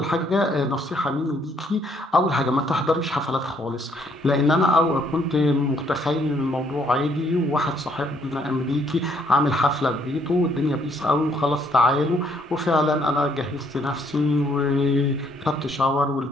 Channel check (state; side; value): normal; both; correlation 0.68